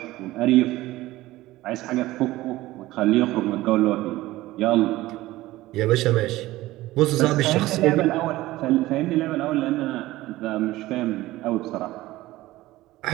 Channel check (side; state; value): left; quieter; 17.3 dB